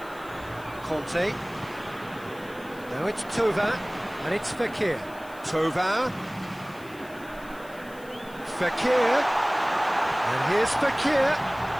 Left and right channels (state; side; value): noise; left; hiss, 23 dB below the sound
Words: Conte. Now it's Thauvin, and it's Fekir. Thauvin. Fekir. And here's Fekir.